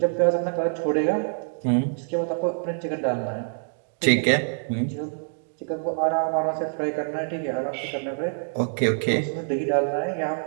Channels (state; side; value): silent; left; 61 dB below the other